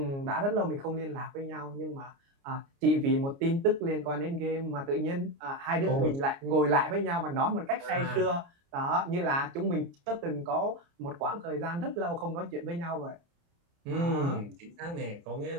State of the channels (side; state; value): left; late; 29 ms